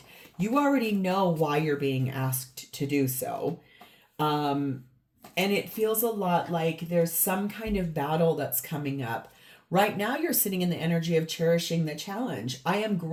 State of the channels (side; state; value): both; identical; correlation 1.00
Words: You already know why you're being asked to do so. And it feels a lot like there's some kind of battle that's coming up. Right now, you're sitting in the energy of cherishing the challenge. I am